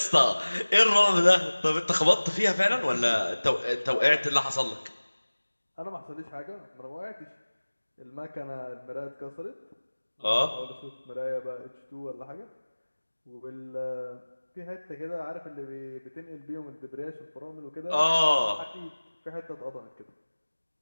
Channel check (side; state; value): both; inverted; correlation -1.00